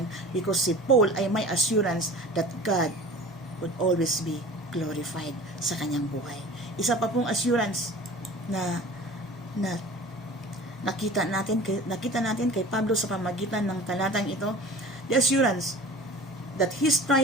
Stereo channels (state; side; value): normal; both; correlation 0.41